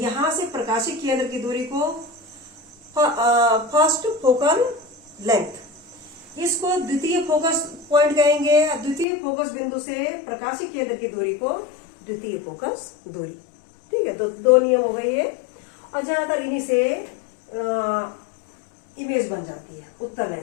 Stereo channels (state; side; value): drops out; right; at 9.1 s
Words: से प्रकाशिक केंद्र की दूरी को फर्स्ट फोकल लेंथ, इसको द्वितीय फोकस पॉइंट कहेंगे। द्वितीय फोकस बिंदु से प्रकाशिक केंद्र की दूरी को द्वितीय फोकस दूरी। ठीक है, तो दो नियम हो गए ये। और ज्यादातर इन्हीं से इमेज बन जाती है उत्तल